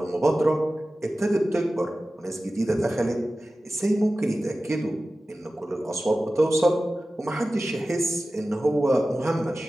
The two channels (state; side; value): normal; both; correlation 0.95